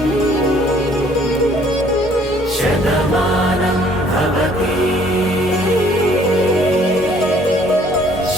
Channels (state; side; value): normal; both; correlation 0.60